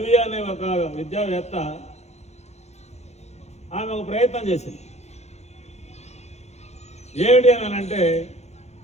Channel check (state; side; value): late; right; 0.32 ms